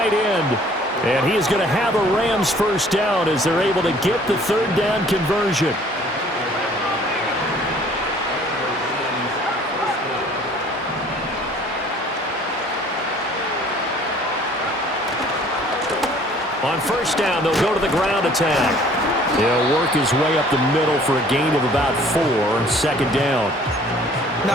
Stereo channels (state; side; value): normal; both; correlation 0.55